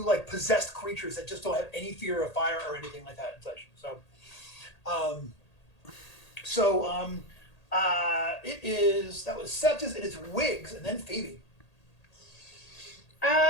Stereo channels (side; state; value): right; late; 1.8 ms